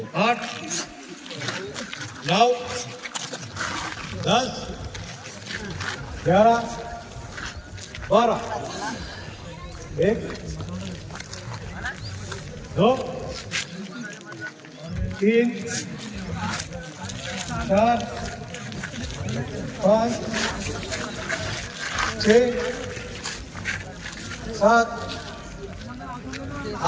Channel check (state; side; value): identical; both; correlation 1.00